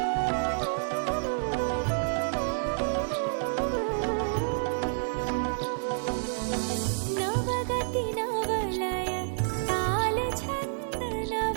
नवगति नवलय ताल छंद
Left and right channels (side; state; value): left; silent; digital silence